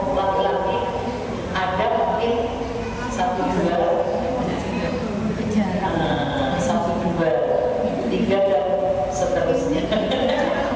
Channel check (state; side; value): identical; both; correlation 1.00